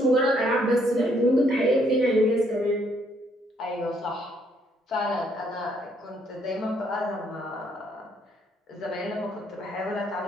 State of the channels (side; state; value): both; normal; correlation 0.69